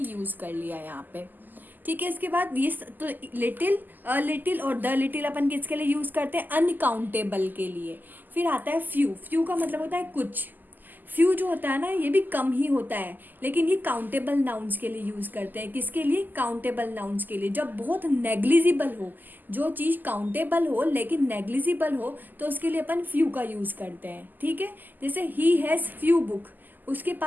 यूज़ कर लिया यहाँ पे. ठीक है. इसके बाद ये तो लिटिल, अ लिटिल और द लिटिल अपन किसके लिए यूज़ करते हैं? अनकाउंटेबल के लिए. फिर आता है फ्यू. फ्यू का मतलब होता है कुछ. फ्यू जो होता है ना, ये भी कम ही होता है, लेकिन ये काउंटेबल नाउन्स के लिए यूज़ करते हैं. किसके लिए? काउंटेबल नाउन्स के लिए. जब बहुत नेग्लिजिबल हो, जो चीज़ काउंटेबल हो लेकिन नेग्लिजिबल हो, तो उसके लिए अपन फ्यू का यूज़ करते हैं. ठीक है. जैसे ही हैज़ फ्यू बुक. उसके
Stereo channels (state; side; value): late; left; 0.087 ms